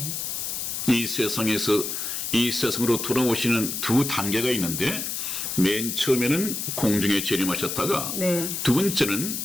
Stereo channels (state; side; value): noise; left; hiss, 3 dB below the sound